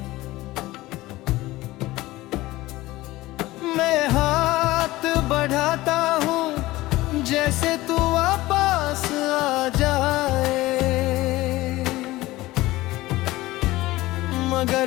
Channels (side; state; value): right; quieter; 18.3 dB